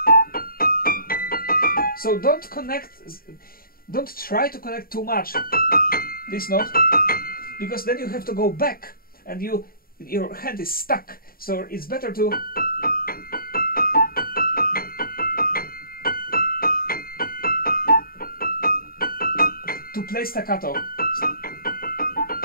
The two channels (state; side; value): late; right; 0.43 ms